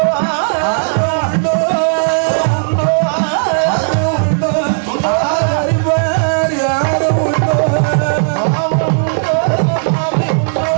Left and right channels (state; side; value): silent; left; digital silence